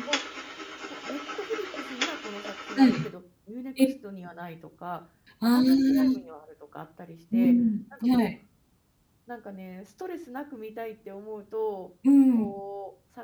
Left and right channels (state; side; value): identical; both; correlation 1.00